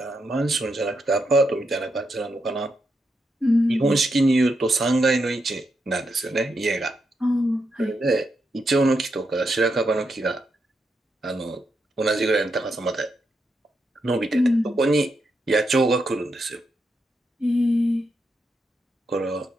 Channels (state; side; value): normal; both; correlation 0.83